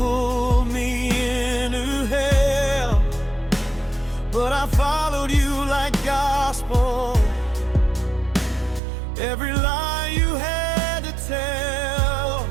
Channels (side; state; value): left; drops out; at 8.8 s